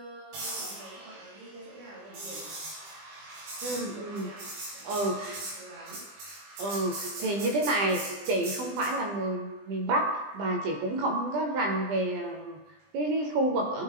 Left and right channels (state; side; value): late; left; 20 ms